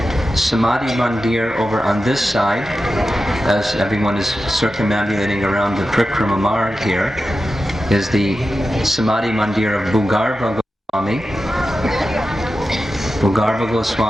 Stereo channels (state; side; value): normal; both; correlation 0.92